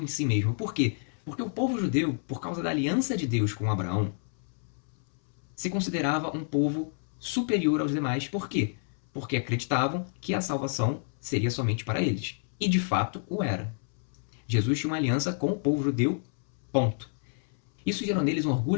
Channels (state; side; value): silent; right; 58 dB below the other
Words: em si mesmo. Por quê? Porque o povo judeu, por causa da aliança de Deus com Abraão, se considerava um povo superior aos demais. Por quê? Porque acreditavam que a salvação seria somente para eles. E de fato o era. Jesus tinha uma aliança com o povo judeu, ponto. Isso gerou neles um